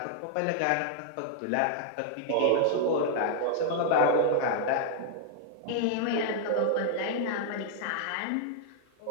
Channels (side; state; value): both; different; correlation -0.01